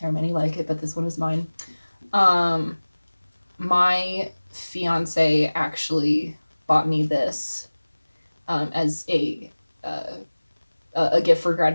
are many like it, but this one is mine. My fiance actually bought me this as a gift for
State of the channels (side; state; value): both; inverted; correlation -1.00